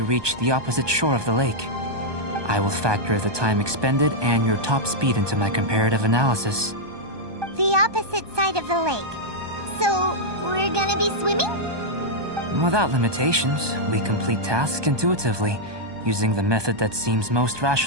reach the opposite shore of the lake. I will factor the time expended and your top speed into my comparative analysis. The opposite side of the lake. So, we're gonna be swimming? Without limitations, we complete tasks intuitively, using the method that seems most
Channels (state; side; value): late; left; 1.2 ms